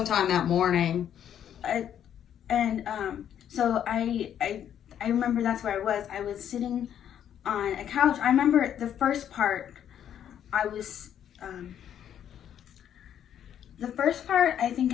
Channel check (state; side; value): quieter; right; 9.7 dB